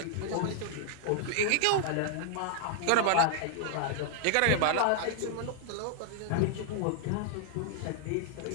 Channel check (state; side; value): different; both; correlation 0.00